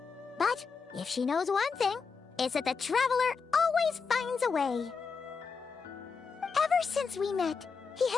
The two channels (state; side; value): quieter; right; 5.3 dB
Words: But if she knows one thing, it's that the Traveler always finds a way. Ever since we met, he